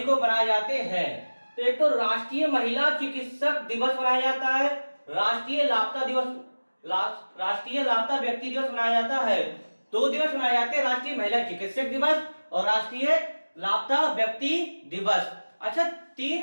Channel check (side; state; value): both; inverted; correlation -1.00